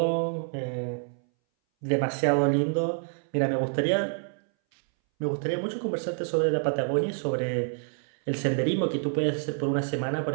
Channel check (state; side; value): silent; left; 59 dB below the other